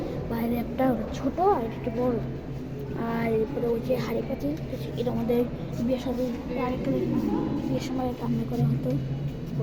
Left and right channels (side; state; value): both; identical; correlation 1.00